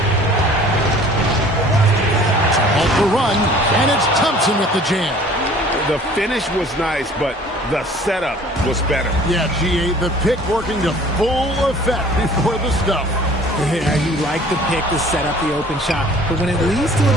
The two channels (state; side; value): normal; both; correlation 0.51